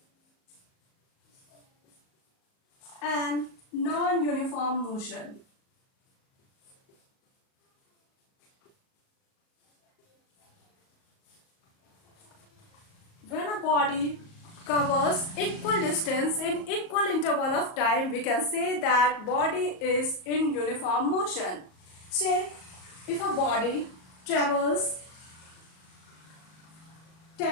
and non-uniform motion. When a body covers equal distance in equal interval of time, we can say that body is in uniform motion. Say, if a body travels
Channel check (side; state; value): right; late; 38 ms